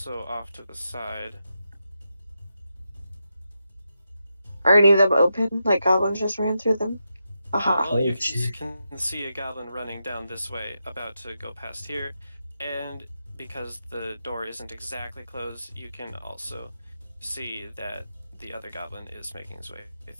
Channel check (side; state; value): both; inverted; correlation -0.86